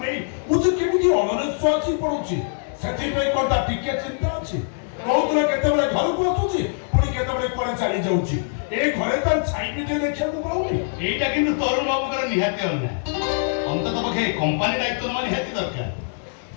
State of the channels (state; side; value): silent; right; 58 dB below the other